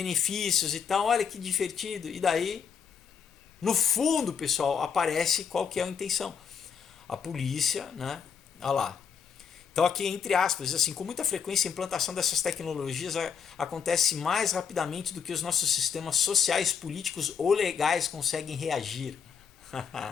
e tal, olha que divertido. E daí, no fundo, pessoal, aparece qual que é a intenção. A polícia, né? Olha lá. Então aqui, entre aspas, assim, com muita frequência a implantação dessas tecnologias acontece mais rapidamente do que os nossos sistemas sociais, políticos ou legais conseguem reagir.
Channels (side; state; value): right; quieter; 6.9 dB